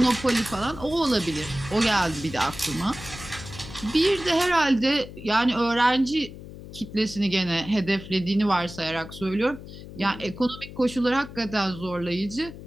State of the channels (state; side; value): noise; left; hum, 14 dB below the sound